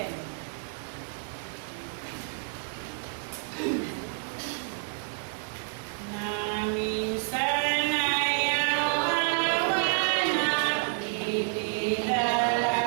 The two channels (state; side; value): silent; left; 59 dB below the other